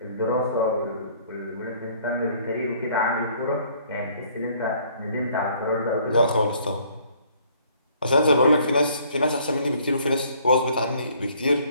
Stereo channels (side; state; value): both; inverted; correlation -0.60